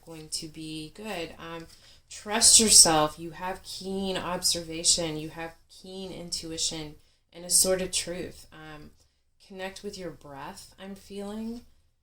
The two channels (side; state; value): both; identical; correlation 1.00